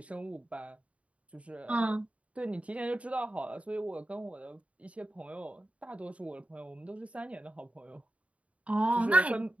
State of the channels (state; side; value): late; left; 0.065 ms